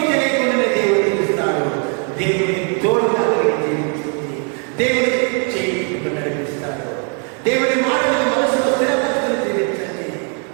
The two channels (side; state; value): left; quieter; 38.2 dB